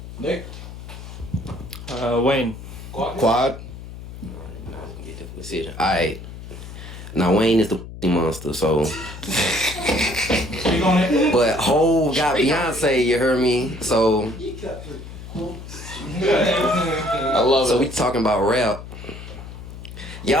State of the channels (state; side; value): noise; left; hum, 12 dB below the sound